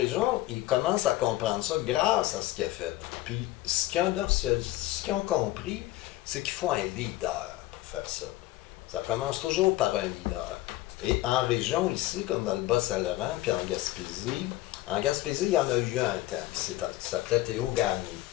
ils commencent à comprendre ça grâce à ce qu'il a fait. Puis, ce qu'ils ont compris, c'est qu'il faut un leader pour faire ça. Ça commence toujours par un leader. Et en région, ici, comme dans le Bas-Saint-Laurent, puis en Gaspésie, il y en a eu un temps, qui s'appelait Théo Gagné.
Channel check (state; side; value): quieter; right; 16.8 dB